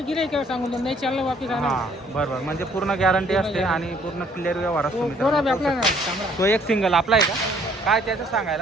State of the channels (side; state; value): both; normal; correlation 0.62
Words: सांगून नाही चाललं वापस आणा। हां बरोबर, म्हणजे पूर्ण गॅरंटी असते आणि पूर्ण क्लिअर व्यवहार असतो मित्रांनो। तो एक सिंगल आपला आहे का? काय त्याचं